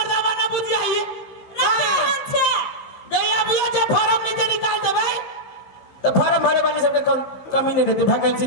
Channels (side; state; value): right; late; 15 ms